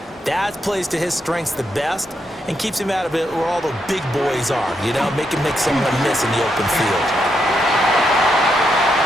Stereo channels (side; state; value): both; normal; correlation 0.80